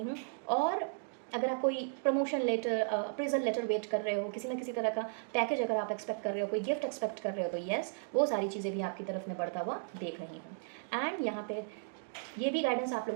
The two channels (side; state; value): left; silent; digital silence